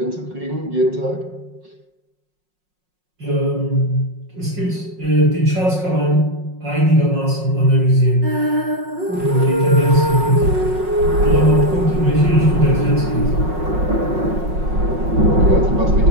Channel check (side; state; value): left; late; 5.5 ms